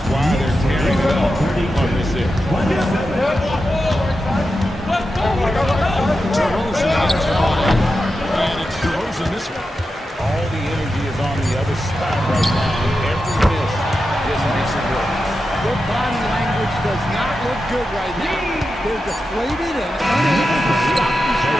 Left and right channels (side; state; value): both; normal; correlation 0.90